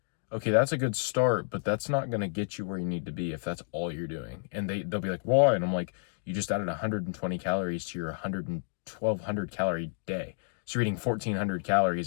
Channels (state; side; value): silent; right; digital silence